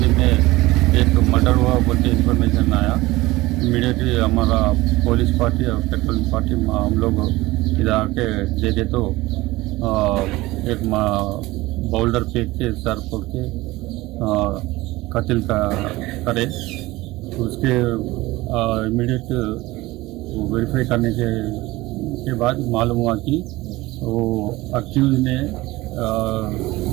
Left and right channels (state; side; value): quieter; left; 19.5 dB